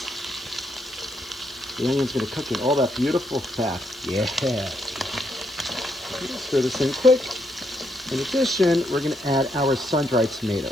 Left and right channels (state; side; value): noise; left; hiss, 23 dB below the sound